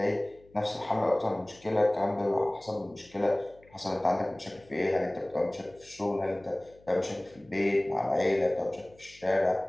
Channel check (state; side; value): noise; left; hum, 27 dB below the sound